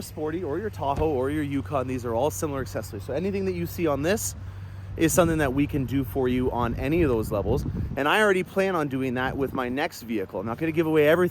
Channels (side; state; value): both; identical; correlation 1.00